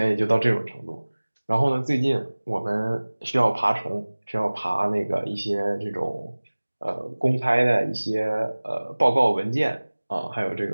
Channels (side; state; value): both; inverted; correlation -1.00